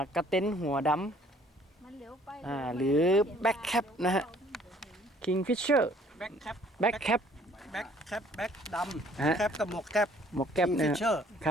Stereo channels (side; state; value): both; normal; correlation 0.58